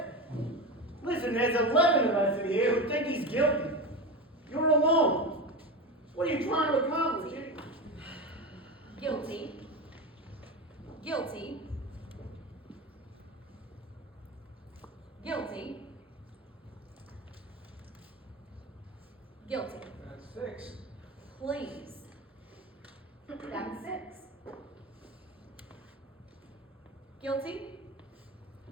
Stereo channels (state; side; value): normal; both; correlation 0.22